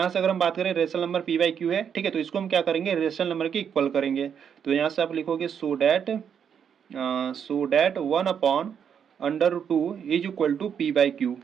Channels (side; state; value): left; quieter; 7.8 dB